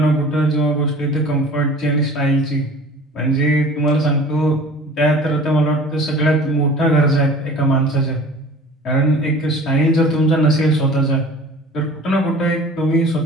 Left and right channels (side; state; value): both; normal; correlation 0.44